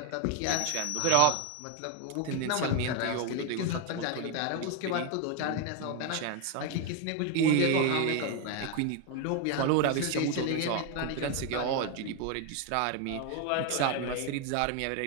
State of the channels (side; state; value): both; different; correlation 0.01